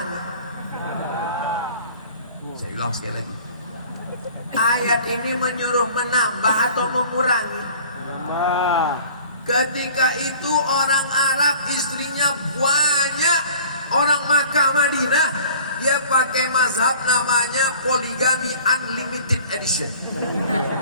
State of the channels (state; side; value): inverted; both; correlation -0.48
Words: Saya ulang sekali lagi. Ayat ini menyuruh menambah atau mengurangi? Ketika itu orang Arab istrinya banyak, orang Makkah Madinah, dia pakai mazhab namanya poligami unlimited edition.